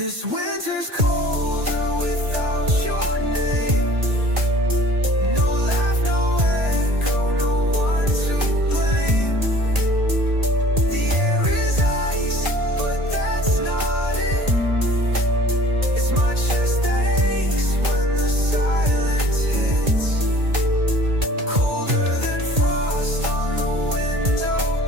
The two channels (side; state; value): left; late; 1.7 ms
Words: This winter's colder without your name. No laugh, no echo, no one to blame. The air is ice, but that's not it. It's my chest that aches when the silence hits. Colder than frost on the window